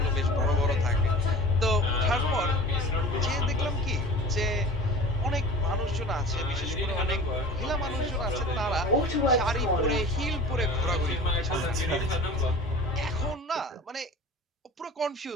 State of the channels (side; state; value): both; normal; correlation 0.38